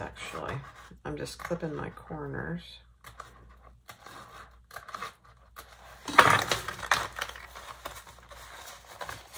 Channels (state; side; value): identical; both; correlation 1.00